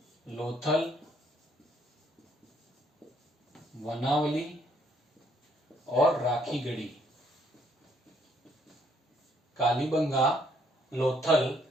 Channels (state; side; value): normal; both; correlation 0.68